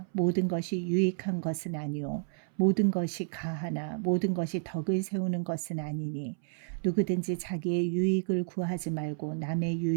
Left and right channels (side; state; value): left; silent; 57 dB below the other